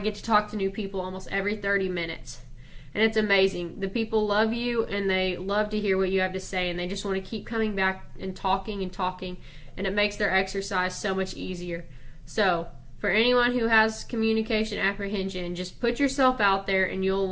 to talk to new people almost every 30 minutes. And it's amazing. The people love you, and they love to hear what you have to say, and they just want to keep coming back and talking, and it makes their exercise so much easier. So, for anyone who has communication apprehension, just put yourself out there and you'll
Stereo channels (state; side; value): identical; both; correlation 1.00